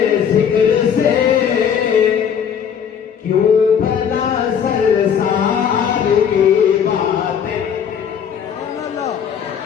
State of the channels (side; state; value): right; quieter; 7.8 dB